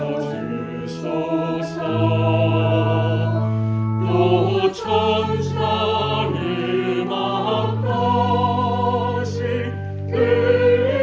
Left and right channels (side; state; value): both; identical; correlation 1.00